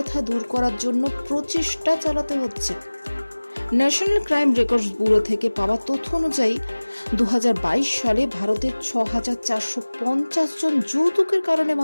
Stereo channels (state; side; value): inverted; both; correlation -1.00